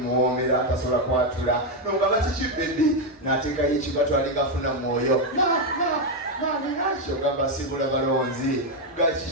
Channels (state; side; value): normal; both; correlation 0.04